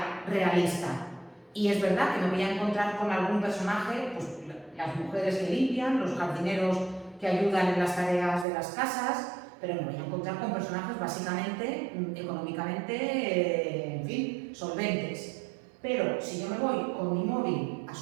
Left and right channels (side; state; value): left; drops out; at 8.5 s